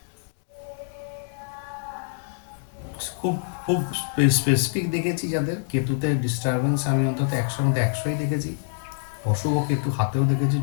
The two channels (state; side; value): silent; right; digital silence